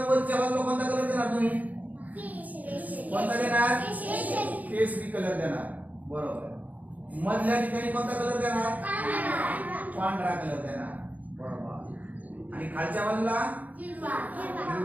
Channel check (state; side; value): late; left; 0.076 ms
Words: वरच्या बाजूला कोणता कलर देणार तुम्ही? कोणता देणार? केसरी कलर देणार, बरोबर। मधल्या ठिकाणी कोणता कलर देणार? पांढरा कलर देणार, बरोबर। आणि खालच्या बाजूला